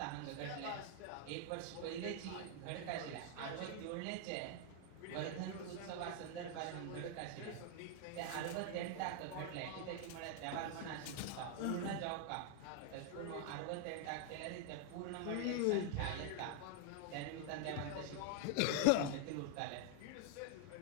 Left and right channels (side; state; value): both; different; correlation 0.00